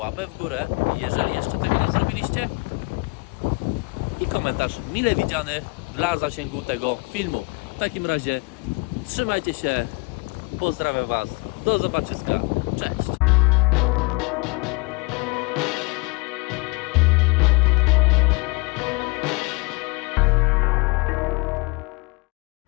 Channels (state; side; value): quieter; right; 26.7 dB